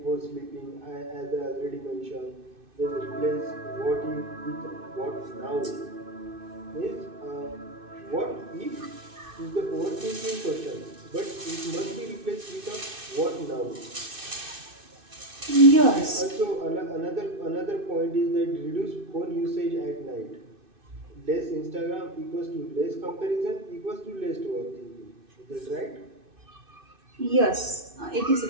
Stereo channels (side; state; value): left; late; 2.6 ms